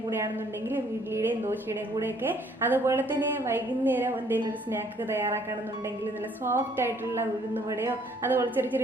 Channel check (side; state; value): both; normal; correlation 0.62